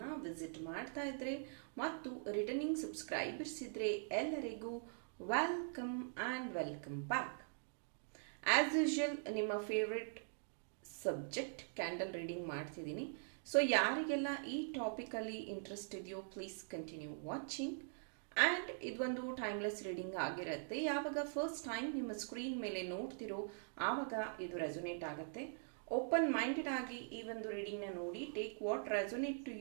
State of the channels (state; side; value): silent; left; digital silence